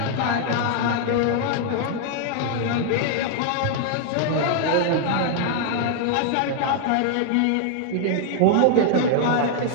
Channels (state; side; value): different; both; correlation 0.00